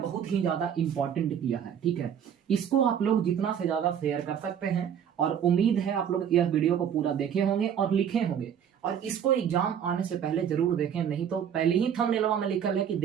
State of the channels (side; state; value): left; quieter; 8.6 dB